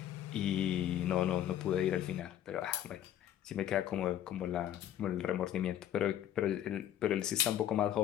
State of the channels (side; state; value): right; quieter; 11.3 dB